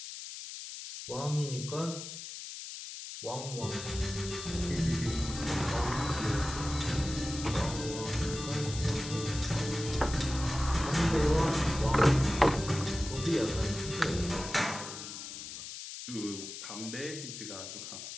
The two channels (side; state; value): left; noise; hiss, 9 dB below the sound